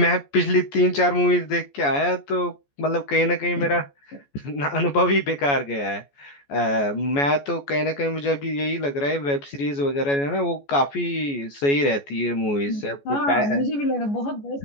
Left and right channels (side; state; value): right; late; 14 ms